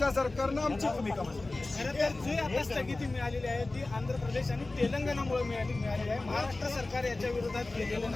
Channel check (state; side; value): quieter; right; 3.1 dB